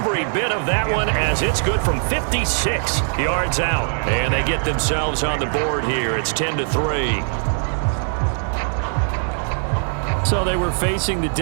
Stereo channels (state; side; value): silent; left; 57 dB below the other